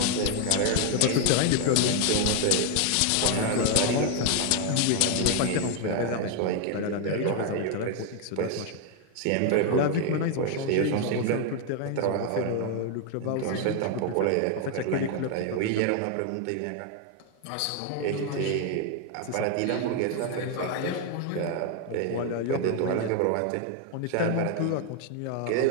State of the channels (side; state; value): both; different; correlation 0.01